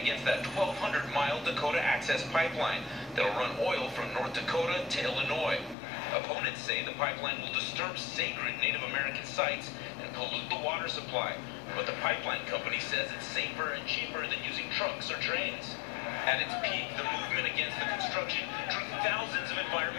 that 1,200-mile Dakota Access Pipeline that'll run oil from North Dakota to Illinois. Opponents say the pipeline will disturb sacred Native American sites and pollute the water supply. But the pipeline company says it's safer and cheaper than using trucks or trains. At its peak, the movement against the construction drew thousands of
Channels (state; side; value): drops out; right; at 5.8 s